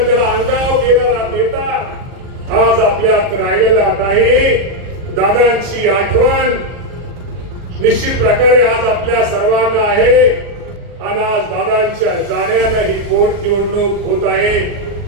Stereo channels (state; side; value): late; left; 40 ms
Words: त्याला अंगावर घेणारा नेता आज आपल्यात राहिलेला नाही. दादांची आठवण निश्चित प्रकारे आज आपल्या सर्वांना आहे आणि आज दादांच्या जाण्यानं ही पोट निवडणूक होत आहे.